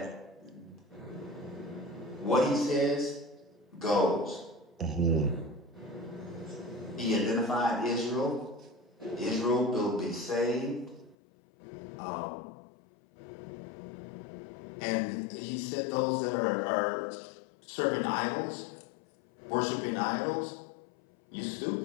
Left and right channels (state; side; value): drops out; right; at 11.2 s